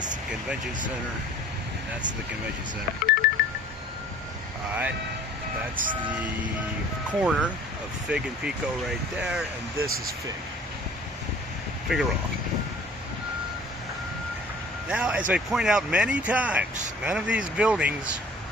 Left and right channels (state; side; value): normal; both; correlation 0.50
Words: the convention center. And that's the convention center. Alright, that's the corner of Fig and Pico right there. And this is Fig. Figueroa. Now, as I point out many times, none of these buildings